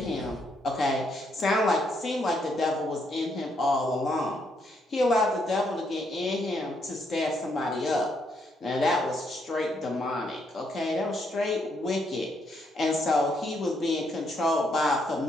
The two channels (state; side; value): normal; both; correlation 0.75